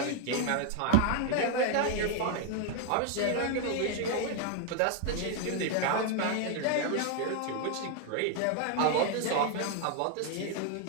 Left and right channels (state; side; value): different; both; correlation 0.00